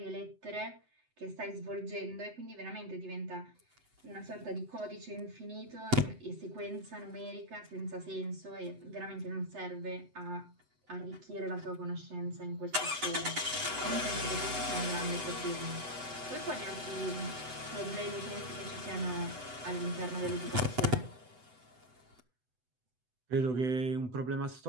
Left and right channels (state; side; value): late; left; 7.9 ms